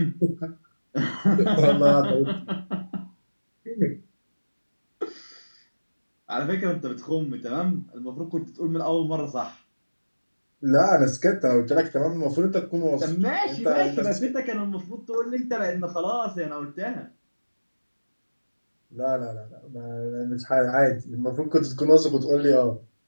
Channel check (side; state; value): both; inverted; correlation -1.00